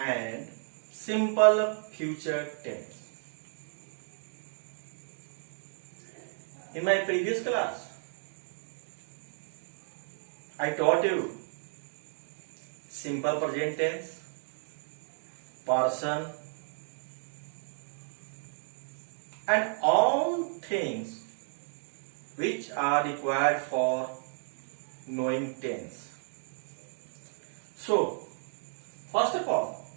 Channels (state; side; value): silent; left; digital silence